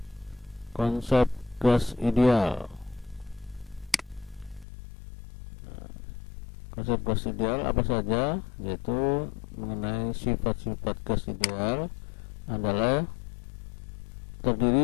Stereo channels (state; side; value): drops out; right; at 4.7 s